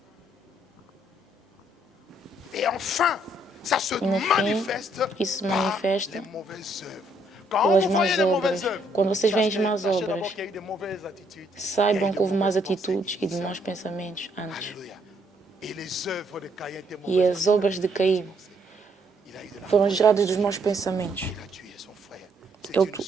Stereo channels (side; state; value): both; normal; correlation 0.70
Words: Et enfin, ça se E no fim, manifeste isso se par manifesta les mauvaises œuvres. Quand pelas vous más voyez les obras. mauvaises œuvres, Quando vocês veem as sachez más d'abord obras, qu'il y a eu de mauvaises attitudes. saibam que houve más atitudes e de maus pensamentos antes. Alléluia. Et les œuvres de Caïn étaient E mauvaises. as obras de Caim Il a eu de foram geradas dos maus pensamentos. Il a tué son frère. C'est Ele une